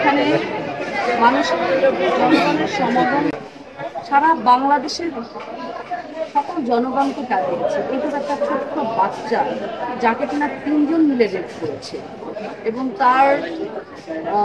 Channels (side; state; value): both; identical; correlation 1.00